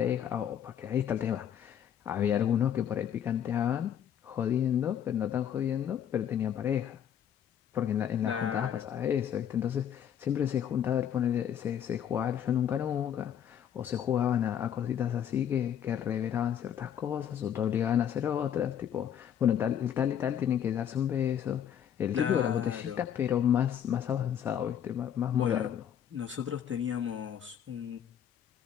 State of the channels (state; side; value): quieter; right; 9.3 dB